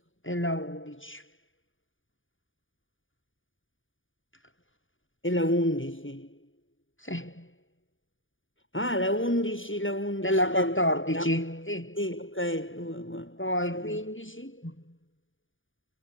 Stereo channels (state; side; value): late; right; 0.57 ms